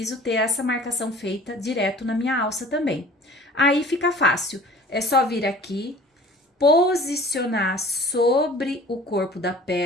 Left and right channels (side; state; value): both; normal; correlation 0.47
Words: ter essa marcação feita direto na minha alça também. Aí fica fácil, é só vir aqui, posicionar sobre o corpo da